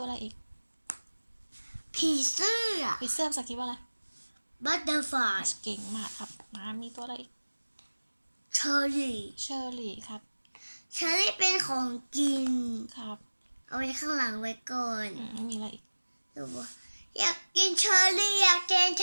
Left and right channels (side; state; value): both; inverted; correlation -1.00